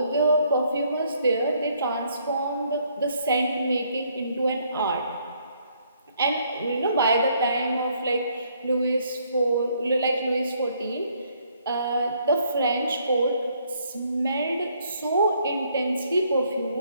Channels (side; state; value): both; inverted; correlation -0.68